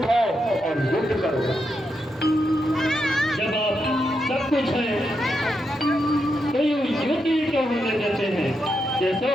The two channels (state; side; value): normal; both; correlation 0.84